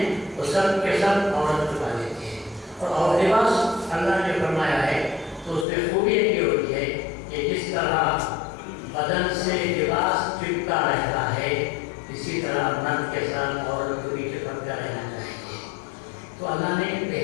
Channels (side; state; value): right; drops out; at 5.7 s